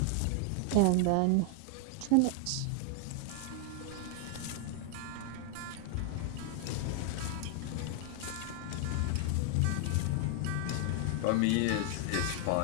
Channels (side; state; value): both; different; correlation 0.00